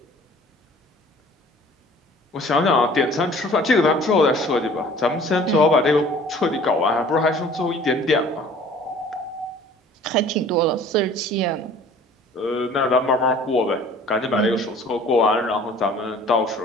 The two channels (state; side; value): normal; both; correlation 0.50